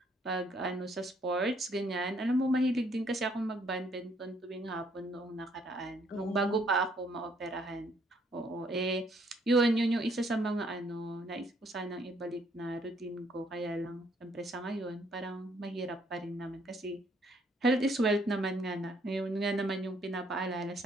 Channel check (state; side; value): normal; both; correlation 0.67